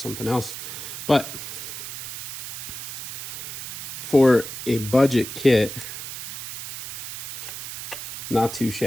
else. But for a budget kit, not too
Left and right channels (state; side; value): noise; right; hiss, 8 dB below the sound